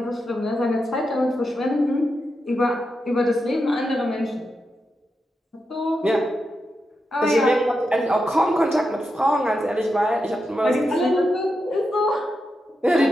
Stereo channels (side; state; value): both; normal; correlation 0.87